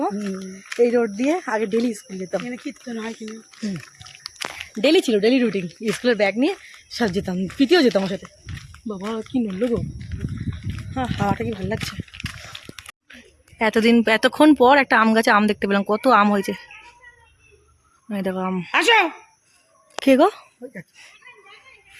মা, এই রোড দিয়ে আগে ডেইলি স্কুল যেতাম। এখানে কীর্তন হয় কিনা, ডেইলি ছিল, ডেইলি রুটিন। স্কুলের ব্যাগ নিয়ে সব যেতাম, পিটিও যেতাম ওর সাথে। বাবা কি নড়লো গো! হ্যাঁ, হাওয়াটা কি ভালো লাগছে। এতক্ষণ পর একটা আম গাছে আম দেখতে পেলাম, কত আম হয়েছে। এই দেখো আম। আসো। কে গো?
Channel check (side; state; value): both; identical; correlation 1.00